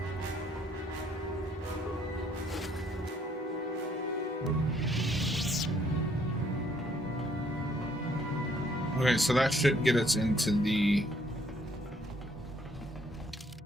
Okay, so that should get us into the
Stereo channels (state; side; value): normal; both; correlation 0.66